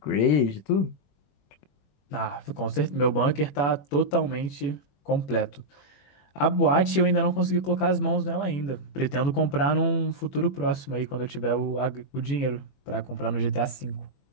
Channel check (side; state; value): right; late; 21 ms